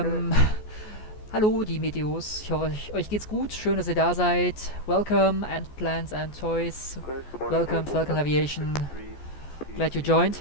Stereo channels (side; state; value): right; late; 14 ms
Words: hallo die Meteos, ich hoffe euch geht's gut, schön dass ihr da seid. Welcome and plans and toys, welcome Falcon Aviation, glad you joined.